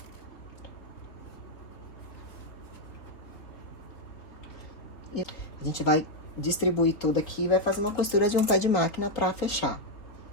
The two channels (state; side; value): late; right; 3.7 ms